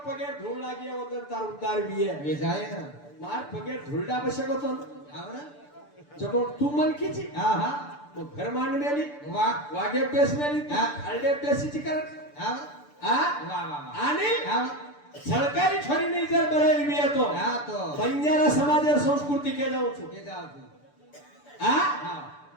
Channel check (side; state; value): right; late; 6.9 ms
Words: पगे धूल लागी ओदन तार उद्धार बिये वेजाय मार पगे धूलडा बसे होतो आवरा जको तू मन कीची हा हा मग घर मान मेली वा वागे पेस मेली हा. हलडे पेसीची कर हा आ वा वा वा आणि हा सरकारी छोरी नहीं जर बरेली भी है तो हा तो बंजारा समाज और संस्कृति के जाऊ छु के जाव तू आ हा